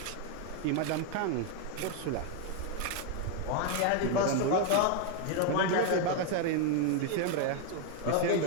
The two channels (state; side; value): different; both; correlation 0.01